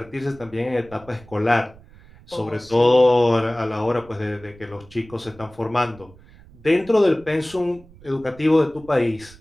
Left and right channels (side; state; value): right; noise; rumble, 23 dB below the sound